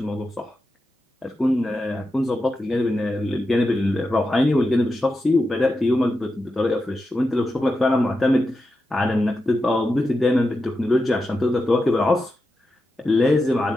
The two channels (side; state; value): both; normal; correlation 0.89